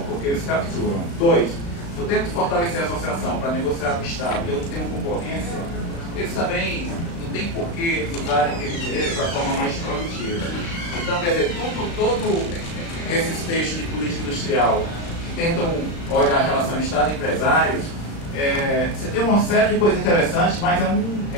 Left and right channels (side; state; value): right; late; 35 ms